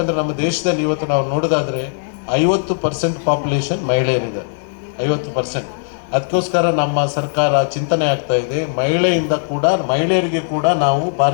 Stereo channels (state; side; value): silent; right; digital silence